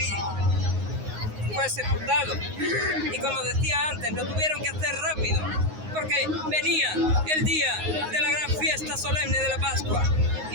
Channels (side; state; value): left; late; 9.5 ms